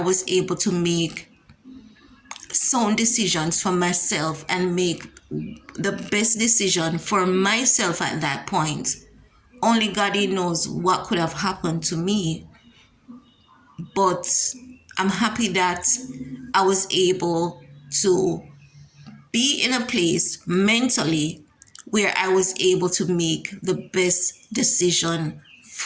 able to make sound decisions for myself and make the best decision for myself at that point, only God knows what could have happened to me. But I'm happy that I was able to be in a place mentally where I was able to make the best decision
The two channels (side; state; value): both; identical; correlation 1.00